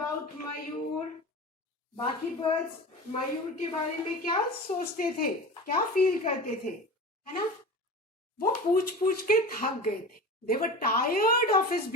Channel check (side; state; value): both; normal; correlation 0.32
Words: Mayur? बाकी birds मयूर के बारे में क्या सोचते थे, क्या feel करते थे, है ना? वो पूछ पूछ के थक गए थे. They were tired of his